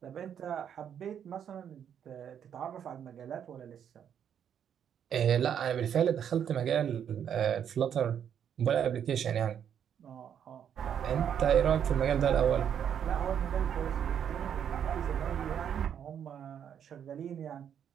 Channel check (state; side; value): quieter; left; 8.7 dB